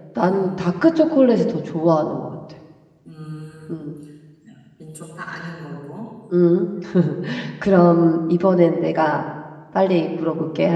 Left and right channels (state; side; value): identical; both; correlation 1.00